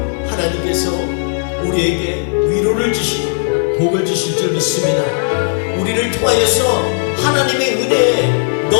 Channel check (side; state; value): right; silent; 64 dB below the other